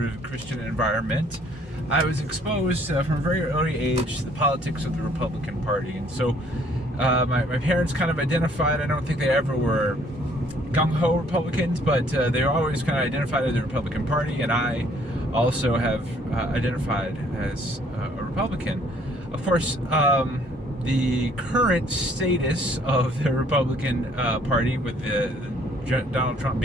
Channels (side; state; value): both; normal; correlation 0.61